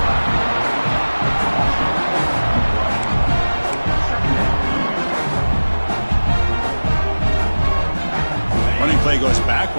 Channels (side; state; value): both; inverted; correlation -1.00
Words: Running play goes